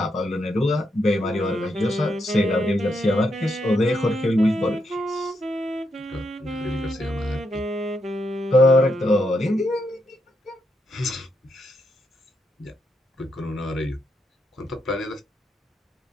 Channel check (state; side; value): normal; both; correlation 0.81